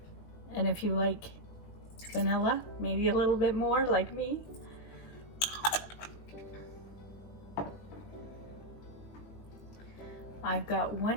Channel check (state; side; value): late; right; 20 ms